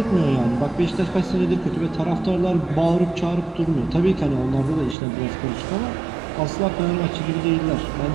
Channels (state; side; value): drops out; left; at 5.0 s